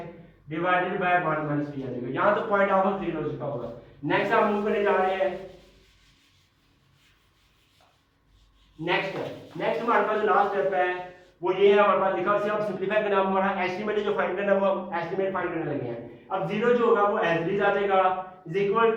divided bye 1 minus p आ जाएगा। यहाँ तो पॉइंट आपको क्लियर हो चुका होगा। नेक्स्ट हम मूव करने जा रहे हैं, नेक्स्ट हमारे पास जो लास्ट स्टेप है वो ये है, हमारे पास लिखा, इसे आप सिंपलीफाई करना, हमारा एस्टीमेट जो फाइंड करना है वो हम एस्टीमेट फाइंड करने लगे हैं। अब 0 जो होगा वो एज इट इज आ जाएगा, is equal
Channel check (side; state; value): both; identical; correlation 1.00